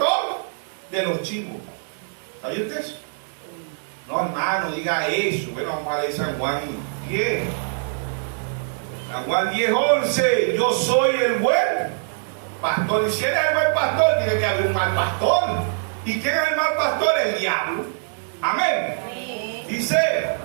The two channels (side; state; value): left; silent; digital silence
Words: de los chivos. ¿Sabía usted eso? No, hermano, diga eso. Bueno, vamos a leer San Juan 10. San Juan 10:11. Yo soy el buen pastor. Y si eres el buen pastor, tiene que haber un mal pastor. ¿Y quién es el mal pastor? El diablo. Amén. Dice,